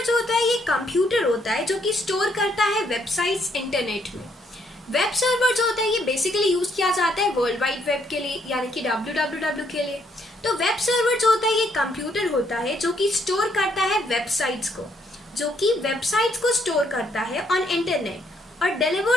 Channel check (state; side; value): normal; both; correlation 0.71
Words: जो होता है ये कंप्यूटर होता है जो कि स्टोर करता है वेबसाइट्स इंटरनेट में। वेब सर्वर जो होता है ये बेसिकली यूज किया जाता है वर्ल्ड वाइड वेब के लिए, यानी कि www के लिए। तो वेब सर्वर जो होता है ये कंप्यूटर होता है जो कि स्टोर करता है वेबसाइट्स को, स्टोर करता है ऑन इंटरनेट और